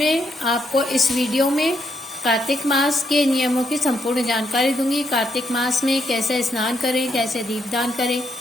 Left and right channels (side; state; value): both; normal; correlation 0.77